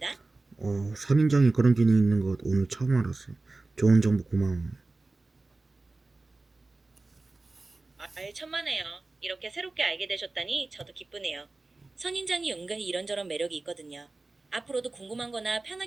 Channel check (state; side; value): quieter; left; 3.3 dB